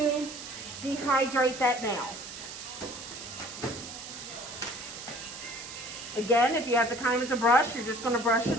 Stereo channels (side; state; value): right; noise; hiss, 11 dB below the sound